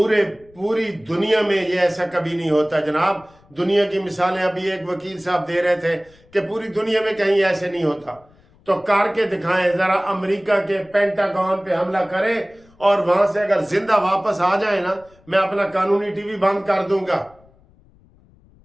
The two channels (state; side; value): noise; left; rumble, 29 dB below the sound